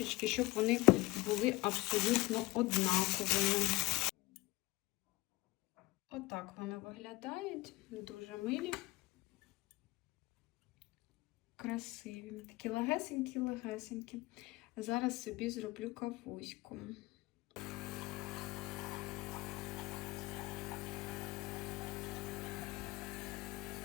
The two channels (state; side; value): quieter; right; 20.9 dB